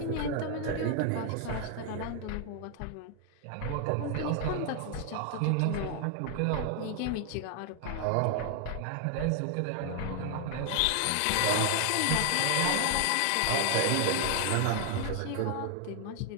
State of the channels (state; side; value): different; both; correlation 0.00